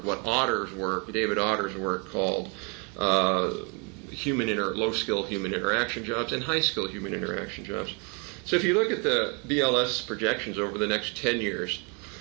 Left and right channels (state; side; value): quieter; left; 33.9 dB